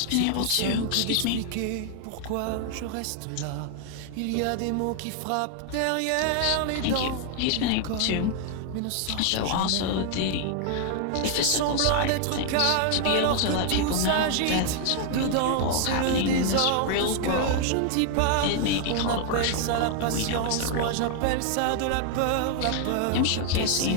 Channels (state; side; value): different; both; correlation 0.00